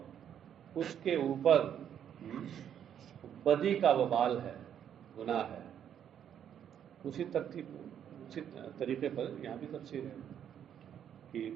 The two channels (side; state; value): left; quieter; 9.2 dB